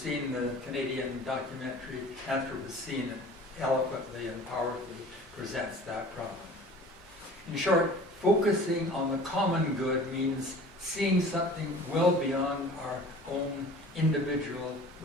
the Canadian documentary Anthropocene, it eloquently and powerfully presents that problem. In short, focusing on the common good means seeing something well beyond our own individual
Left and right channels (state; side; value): normal; both; correlation 0.44